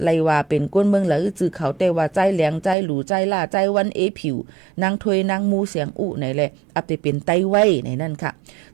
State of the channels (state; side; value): drops out; left; at 2.8 s